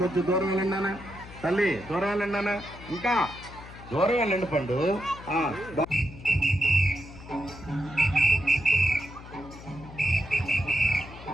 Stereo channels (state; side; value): noise; left; hum, 16 dB below the sound